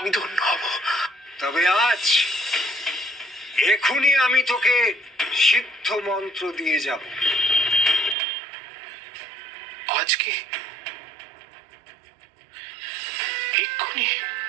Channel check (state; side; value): drops out; left; at 8.2 s